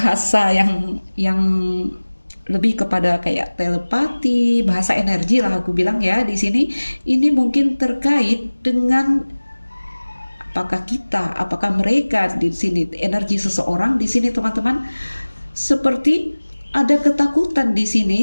yang lebih kepada kayak telepati, bahasa energi lah aku bilang ya di sini. Ini mungkin terkait dengan apakah kita, apakah mereka di sini, energi seseorang di sini teman-teman, seperti ada ketakutan di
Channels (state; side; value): inverted; both; correlation -1.00